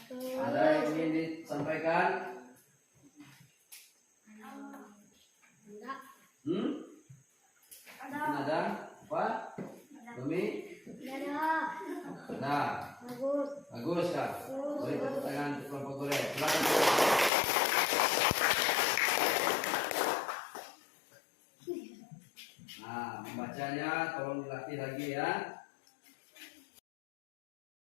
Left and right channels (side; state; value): right; drops out; at 17.3 s